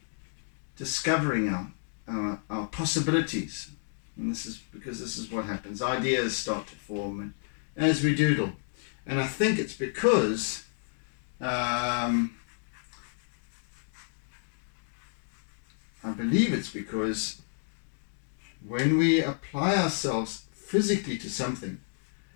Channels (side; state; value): right; silent; digital silence